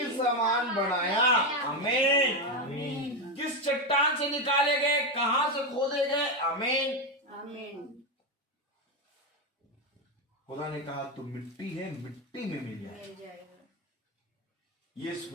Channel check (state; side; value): normal; both; correlation 0.10